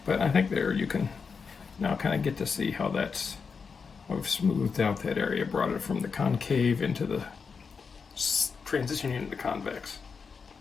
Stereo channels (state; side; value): quieter; right; 5.5 dB